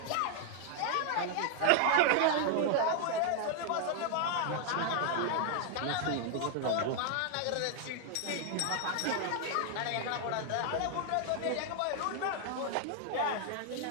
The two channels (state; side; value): different; both; correlation 0.00